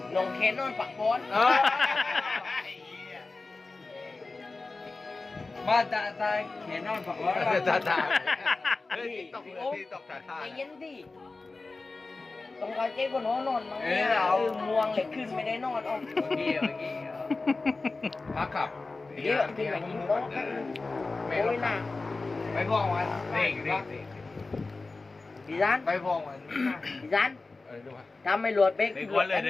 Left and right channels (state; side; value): quieter; right; 3.6 dB